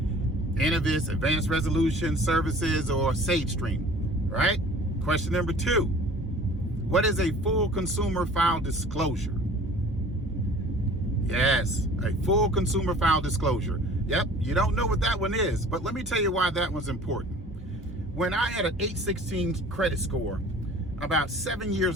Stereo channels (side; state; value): both; normal; correlation 0.47